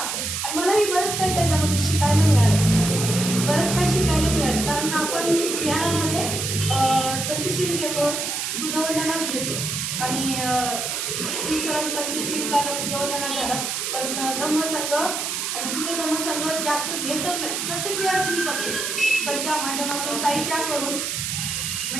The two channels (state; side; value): noise; right; hiss, 2 dB below the sound